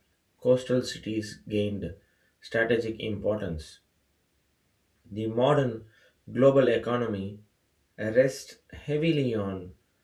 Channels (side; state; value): both; identical; correlation 1.00